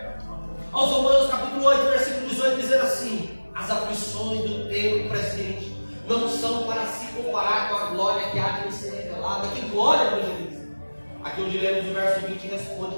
aos Romanos capítulo 8, versículo 18, dizendo assim: as aflições do tempo presente não são para se comparar com a glória que há de nos ser revelada. Que glória, meus amigos? Aqui onde lemos o verso 20 responde:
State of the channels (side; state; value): both; inverted; correlation -1.00